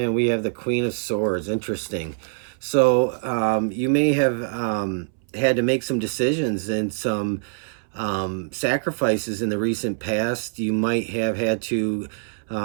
we have the Queen of Swords. Interesting. So you may have had to make some decisions and some sacrifices in the recent past. You might have had to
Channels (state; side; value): silent; left; 62 dB below the other